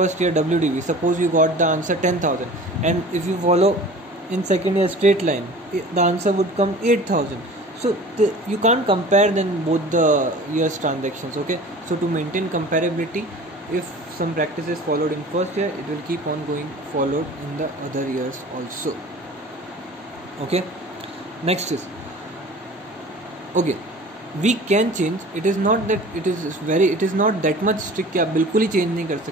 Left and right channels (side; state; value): both; normal; correlation 0.42